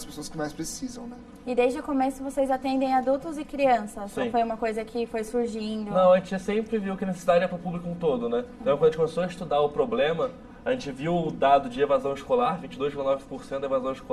pessoas que mais precisam, né? E desde o começo vocês atendem adultos e crianças? Sim. Ou foi uma coisa que foi surgindo? Não, a gente sempre viu que a necessidade é para o público um todo, né? Então, quando a gente começou a estudar o problema, a gente viu o dado de evasão escolar, 22,9% da evasão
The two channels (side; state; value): both; identical; correlation 1.00